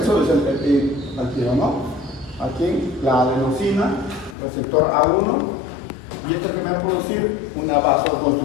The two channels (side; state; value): right; drops out; at 4.4 s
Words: sodio es el activo, ¿no? Aquí la adenosina, receptor A1, y esto que me va a producir una